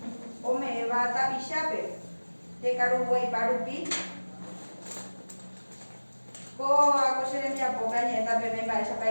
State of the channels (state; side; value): inverted; both; correlation -1.00